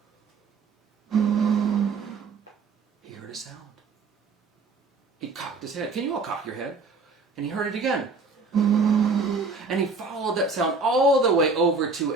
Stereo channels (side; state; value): left; quieter; 4.1 dB